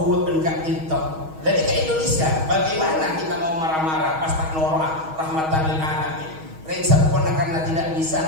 enggak ditok. Jadi ke Indonesia, bagaimana kita mau marah-marah pas tak norah rahmatan lil alamin. Reng sempurna karena tidak bisa,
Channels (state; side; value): late; left; 6.3 ms